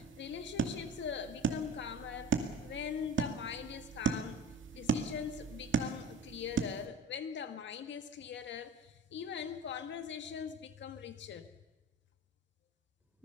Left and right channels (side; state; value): both; normal; correlation 0.37